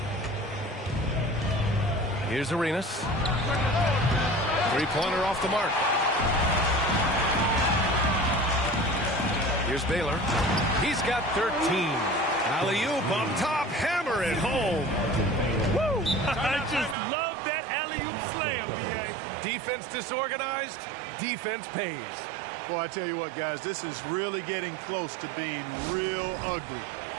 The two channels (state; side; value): drops out; left; at 16.9 s